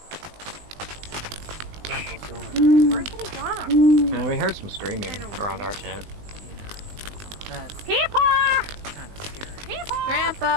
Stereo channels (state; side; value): late; left; 20 ms